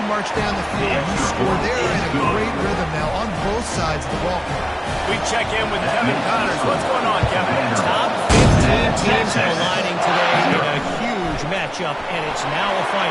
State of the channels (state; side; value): identical; both; correlation 1.00